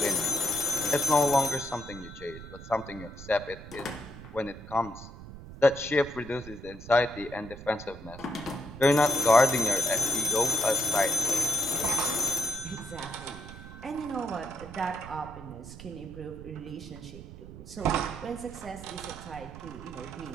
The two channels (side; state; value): right; noise; rumble, 14 dB below the sound